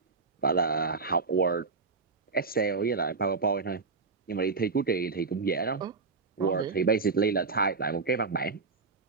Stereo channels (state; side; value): quieter; left; 4.4 dB